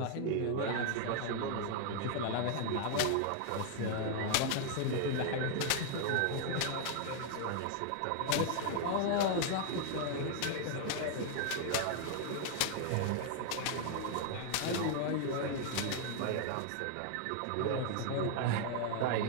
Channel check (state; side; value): different; both; correlation 0.00